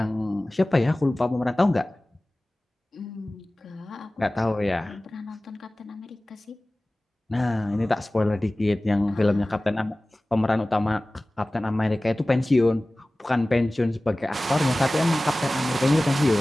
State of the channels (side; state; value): both; normal; correlation 0.98